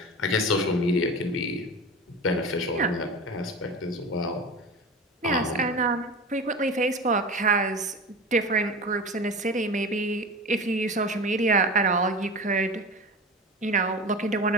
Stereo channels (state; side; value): normal; both; correlation 0.30